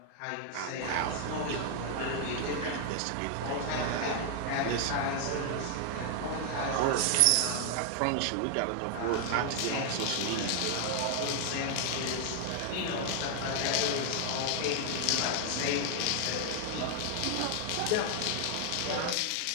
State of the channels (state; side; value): different; both; correlation 0.00